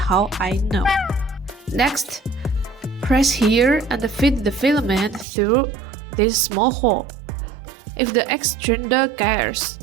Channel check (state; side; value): drops out; left; at 5.2 s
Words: I know. Next, press here and feed the filament through this small hole. If the extruder gears,